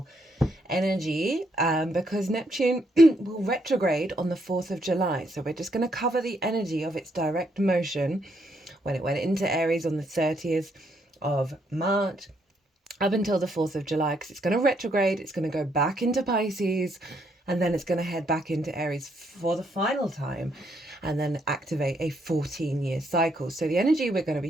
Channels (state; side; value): normal; both; correlation 0.74